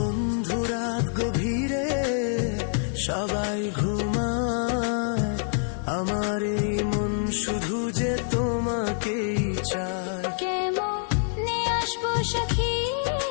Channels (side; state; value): right; silent; 61 dB below the other